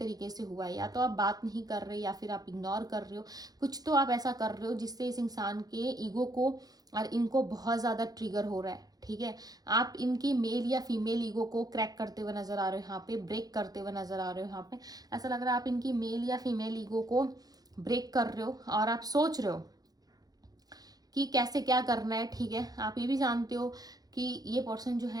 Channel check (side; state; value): left; late; 0.19 ms